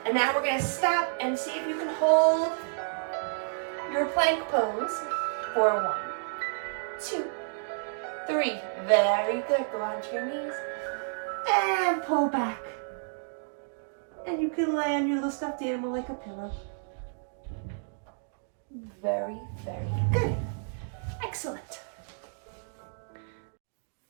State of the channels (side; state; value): left; silent; digital silence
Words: And now we're going to stop and see if you can hold your plank pose for 1, 2, 3. Very good. Go onto your knees and pull back. And you can lay on your little stuffed animal like a pillow. Very, very good. Excellent.